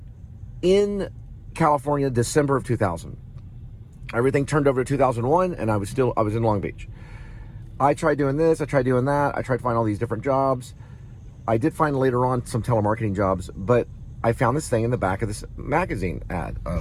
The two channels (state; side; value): identical; both; correlation 1.00